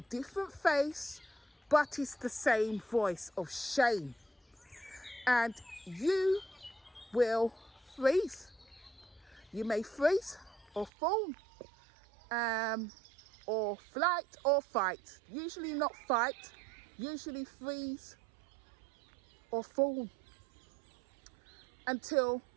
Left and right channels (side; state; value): left; drops out; at 10.9 s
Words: different face, but it's the same voice of shame. And you will freeze. You may freeze or fall, or flight or fight. Usually not fight, usually freeze or fall until